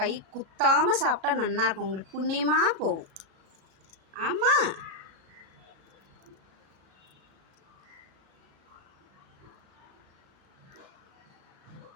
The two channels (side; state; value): left; late; 36 ms